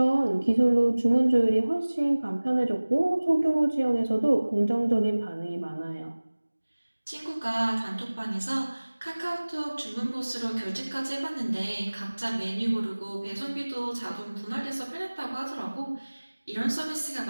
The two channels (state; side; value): inverted; both; correlation -1.00